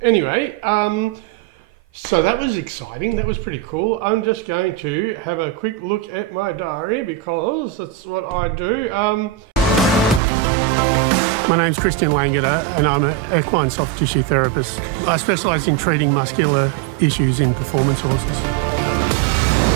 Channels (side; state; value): left; drops out; at 10.2 s